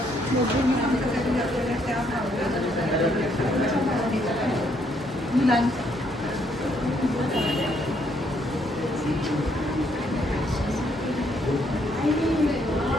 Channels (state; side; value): normal; both; correlation 0.71